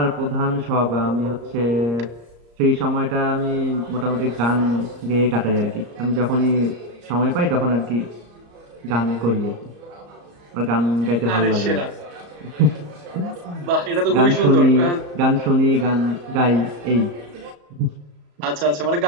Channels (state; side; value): late; left; 34 ms